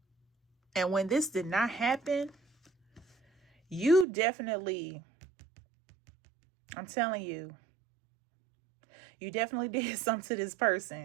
And when this did not happen, you definitely, I'm telling you, you definitely did something to this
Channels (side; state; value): left; drops out; at 4.0 s